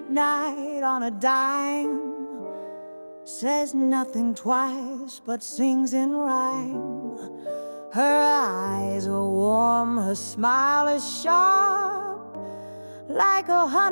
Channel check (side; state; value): both; inverted; correlation -1.00